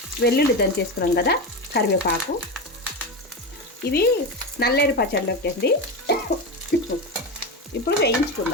వెల్లుల్లి దంచేసుకున్నాం కదా, కరివేపాకు. ఇవి నల్లేరు పచ్చడిలోకి అండి. ఇప్పుడు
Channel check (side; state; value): both; normal; correlation 0.18